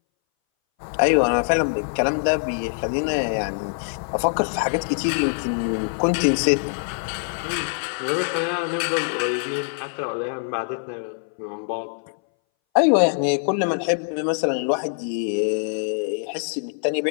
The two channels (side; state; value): right; silent; 61 dB below the other